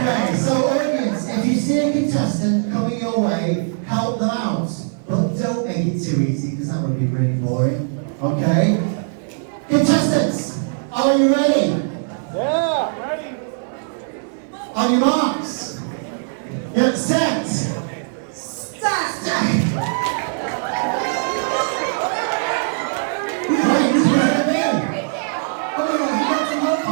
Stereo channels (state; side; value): silent; left; 58 dB below the other